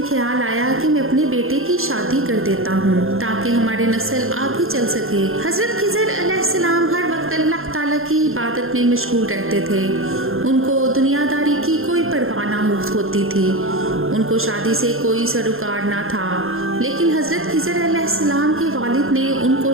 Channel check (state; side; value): late; left; 0.61 ms